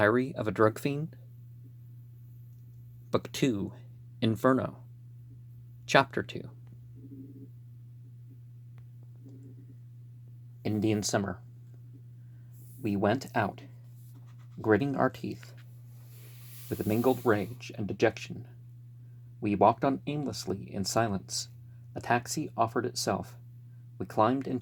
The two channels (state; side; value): identical; both; correlation 1.00